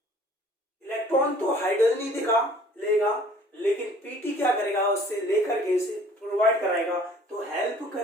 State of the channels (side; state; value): both; normal; correlation 0.53